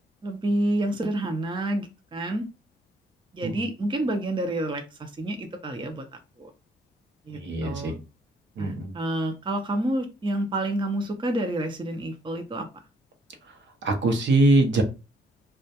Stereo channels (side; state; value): both; normal; correlation 0.70